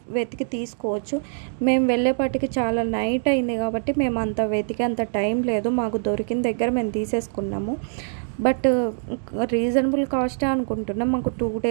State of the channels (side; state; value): left; silent; digital silence